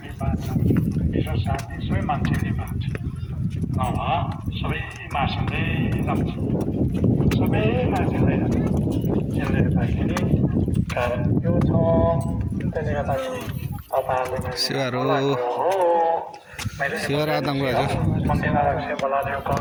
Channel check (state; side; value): identical; both; correlation 1.00